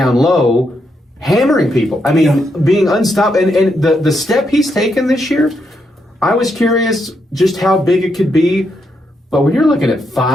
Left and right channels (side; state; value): both; normal; correlation 0.80